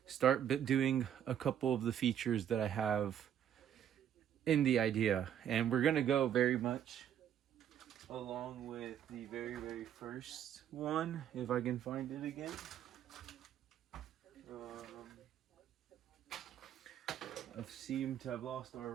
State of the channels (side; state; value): left; quieter; 9.8 dB